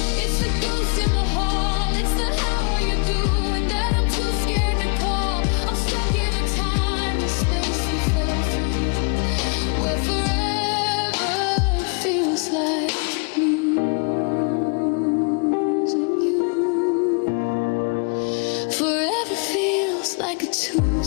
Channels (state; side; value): quieter; right; 35.7 dB